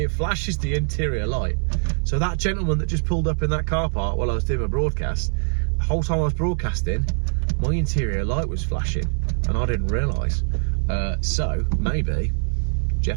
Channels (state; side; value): silent; left; digital silence